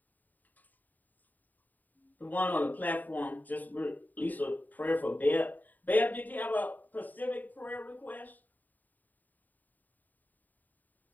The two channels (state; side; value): late; right; 0.085 ms